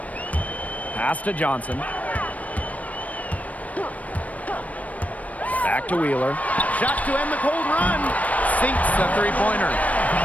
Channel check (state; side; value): late; right; 0.070 ms